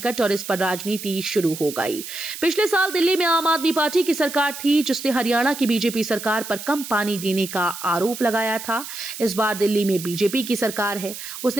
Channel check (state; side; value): noise; right; hiss, 10 dB below the sound